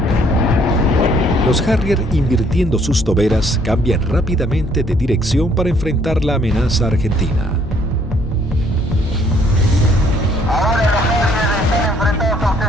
Los Harrier, invirtiendo sus toberas, cambian rápidamente de dirección para enfrentar la amenaza argentina. Ahora los Harrier están enfrentados a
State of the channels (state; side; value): normal; both; correlation 0.64